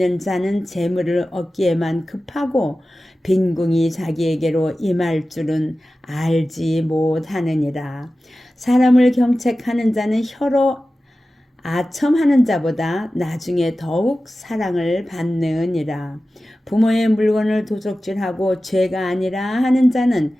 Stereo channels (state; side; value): normal; both; correlation 0.95